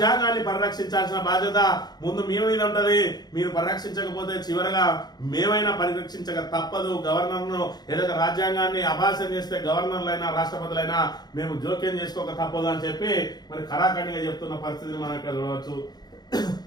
పరిరక్షించాల్సిన బాధ్యత ముందు మీ మీద ఉంటది. మీరు పరిరక్షించకపోతే చివరగా మేమైనా పరిరక్షించక తప్పదు. గవర్నర్ను ఏదైతే రాజ్యాంగాన్ని అభాసం చేస్తే గవర్నర్లైనా రాష్ట్రపతులైనా మేము జోక్యం చేసుకోక తప్పదు అని చెప్పి మరి ఖరాఖండిగా చెప్తున్న పరిస్థితిని మనం ఇక్కడ చూడవచ్చు.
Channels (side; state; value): right; late; 0.20 ms